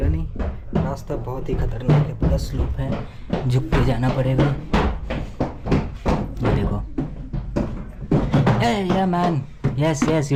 नहीं, रास्ता बहुत ही खतरनाक है, पूरा स्लोप है, झुक के जाना पड़ेगा। ये देखो, या man, yes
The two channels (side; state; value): both; identical; correlation 1.00